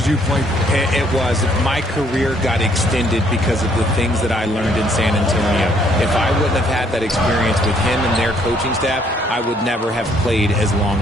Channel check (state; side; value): normal; both; correlation 0.66